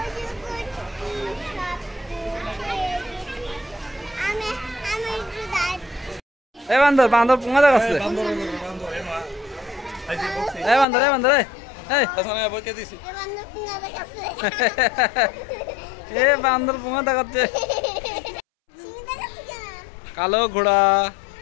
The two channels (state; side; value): drops out; right; at 10.9 s